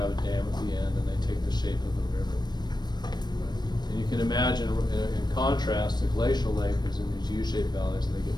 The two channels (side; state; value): right; late; 0.21 ms